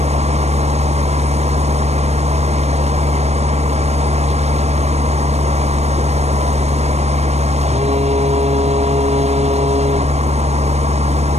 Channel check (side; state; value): left; late; 0.31 ms